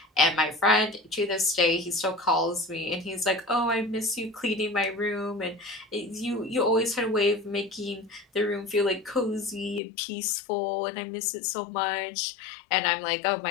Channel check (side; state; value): right; drops out; at 9.8 s